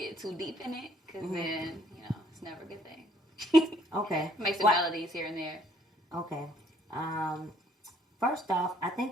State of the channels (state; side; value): normal; both; correlation 0.64